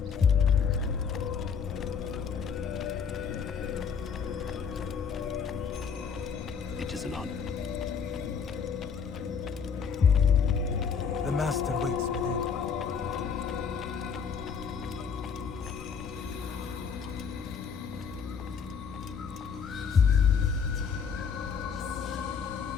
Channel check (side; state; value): right; quieter; 6.4 dB